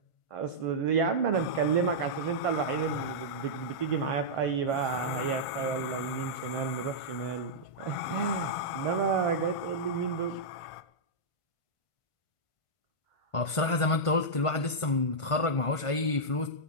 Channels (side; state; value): right; late; 1.5 ms